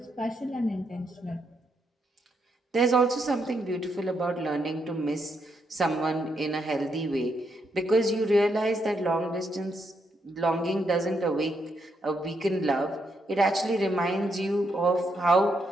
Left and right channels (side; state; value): both; normal; correlation 0.78